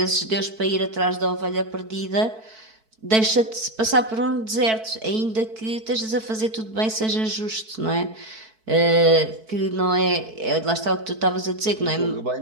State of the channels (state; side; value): late; left; 4.6 ms